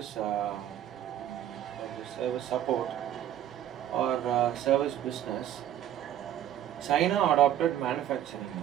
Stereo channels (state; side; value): quieter; left; 11.3 dB